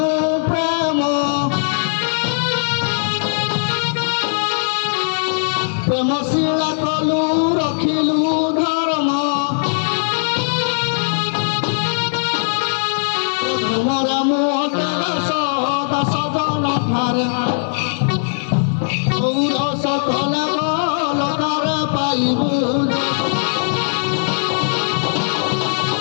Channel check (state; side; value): silent; right; 56 dB below the other